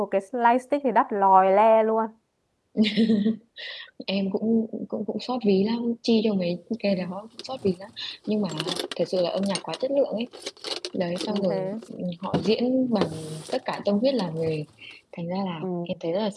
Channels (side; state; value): both; identical; correlation 1.00